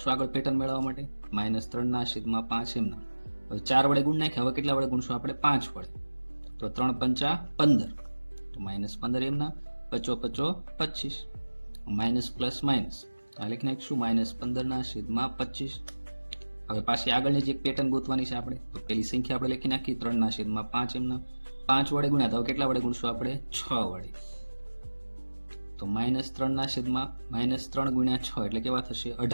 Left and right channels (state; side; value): inverted; both; correlation -1.00